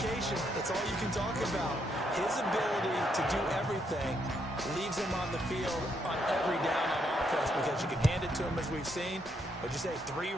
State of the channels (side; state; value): both; normal; correlation 0.75